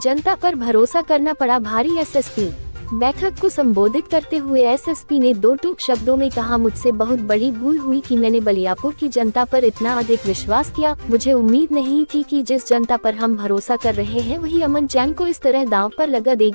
पर भरोसा करना पड़ा भारी। एसएसपी बैठक को संबोधित करते हुए एसएसपी ने दो टूक शब्दों में कहा, मुझसे बहुत बड़ी भूल हुई कि मैंने बलियापुर की जनता पर इतना अधिक विश्वास किया। मुझे उम्मीद नहीं थी कि जिस जनता पर हम भरोसा कर रहे हैं वही अमन चैन को इस तरह दांव पर लगा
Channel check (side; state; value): both; inverted; correlation -1.00